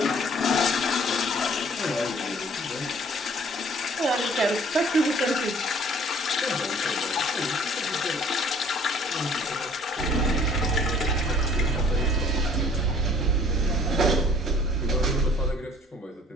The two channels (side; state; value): both; normal; correlation 0.55